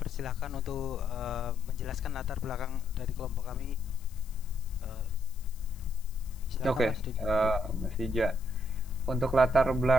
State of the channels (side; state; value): left; noise; hiss, 24 dB below the sound